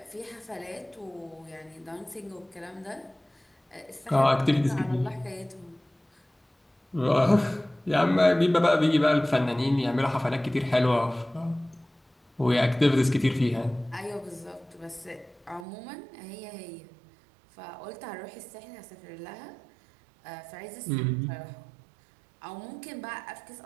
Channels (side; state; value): left; drops out; at 15.7 s